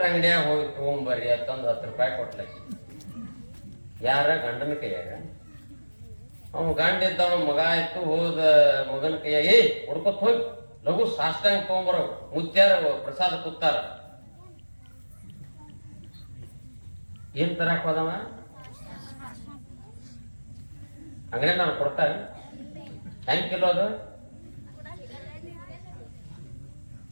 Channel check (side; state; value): both; inverted; correlation -1.00